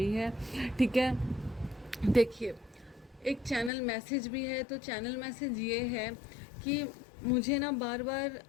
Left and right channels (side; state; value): right; drops out; at 3.7 s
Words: है। ठीक है, देखिए, एक चैनल मैसेज भी है, तो चैनल मैसेज ये है कि मुझे ना बार बार